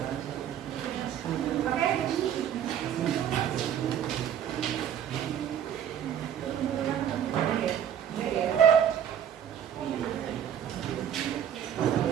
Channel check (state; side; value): quieter; left; 9.5 dB